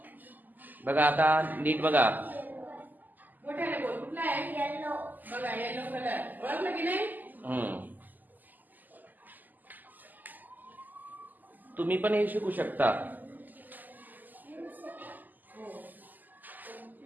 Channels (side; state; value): left; late; 0.085 ms